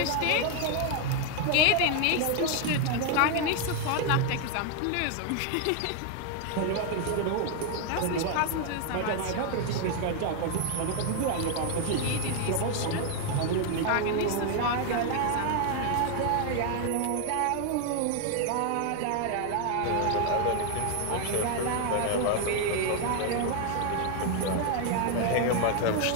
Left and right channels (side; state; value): both; different; correlation 0.01